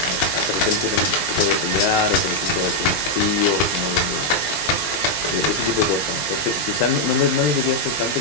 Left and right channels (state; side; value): late; right; 19 ms